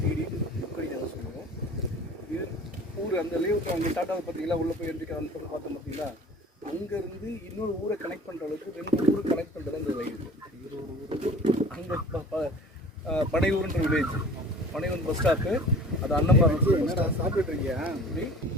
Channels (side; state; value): both; normal; correlation 0.44